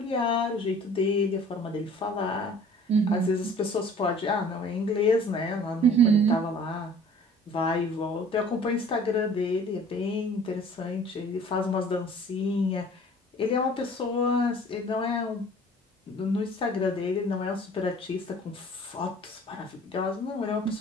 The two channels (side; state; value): both; normal; correlation 0.49